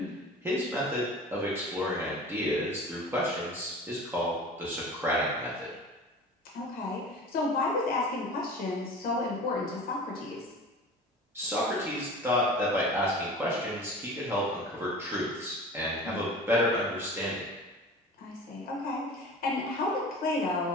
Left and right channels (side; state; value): both; normal; correlation 0.38